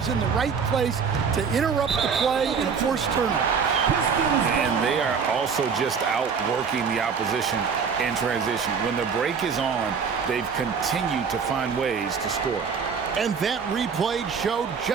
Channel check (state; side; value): quieter; left; 6.0 dB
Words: in the right place to interrupt the play and force turnovers. And they are also just outworking the opposition in transition. When the break is on, they've continued to find ways to score. And that replay showed